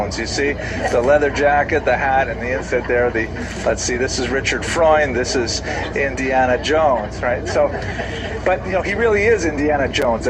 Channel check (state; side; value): identical; both; correlation 1.00